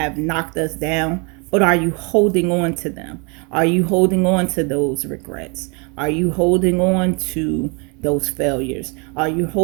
knocked us down, but are you holding on to them? Are you holding on to those regrets? Are you holding on to those failures? Are you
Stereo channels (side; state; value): left; quieter; 32.6 dB